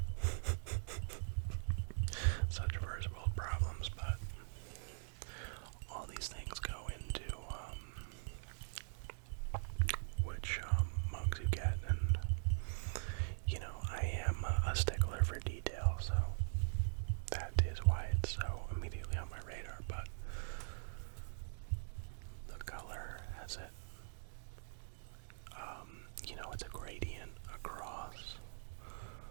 such first world problems, but all these things go into which mugs you get, and you know, I am a stickler for detail, so that is why it's so immediately on my radar. But the color has it, you know, it's a gradient across,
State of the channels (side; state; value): left; silent; digital silence